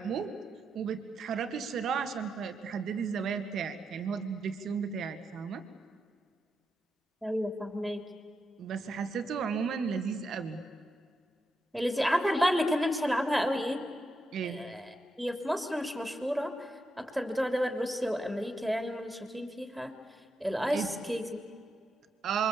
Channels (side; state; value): both; normal; correlation 0.84